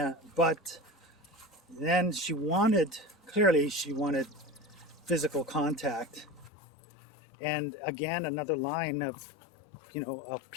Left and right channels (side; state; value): right; drops out; at 6.5 s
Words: But then she wanted physical contact, and again, another line of